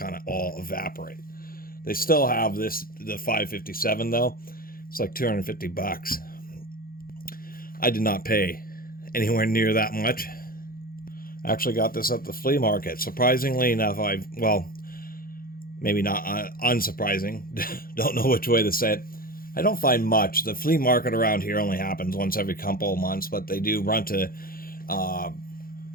of all evaporate. They still have the 557 though. It's like 250 bucks. I did not pay anywhere near that much. I actually got this at the flea market. Surprisingly enough, maybe not unsurprising, don't know which way to say it. I don't find much. The flea market around here only happens once every couple of months, but they do run to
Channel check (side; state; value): right; late; 0.42 ms